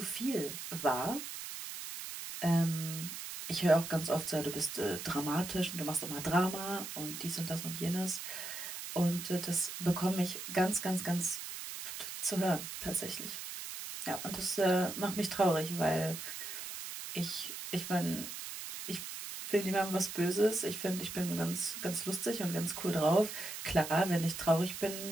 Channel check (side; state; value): right; noise; hiss, 8 dB below the sound